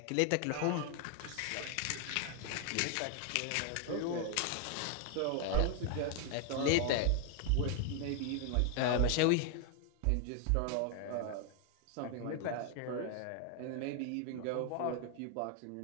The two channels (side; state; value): both; different; correlation 0.00